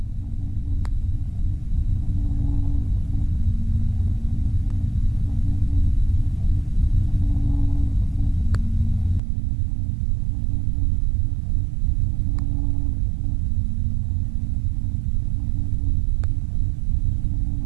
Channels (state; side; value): drops out; left; at 9.2 s